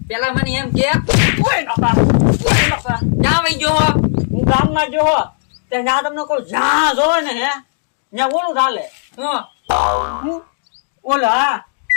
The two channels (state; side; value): silent; right; digital silence